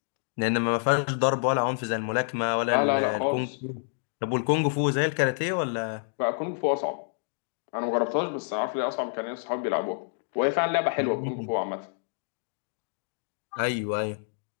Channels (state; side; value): silent; right; digital silence